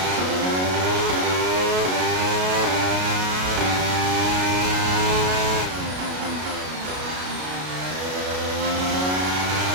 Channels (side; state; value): left; late; 33 ms